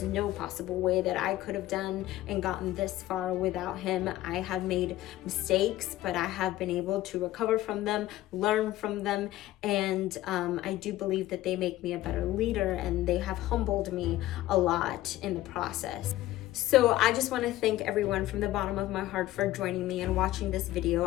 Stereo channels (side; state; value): right; quieter; 15.5 dB